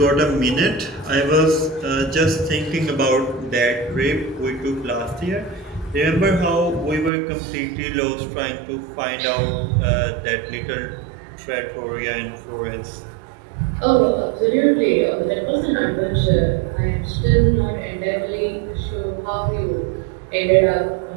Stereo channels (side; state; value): left; drops out; at 7.1 s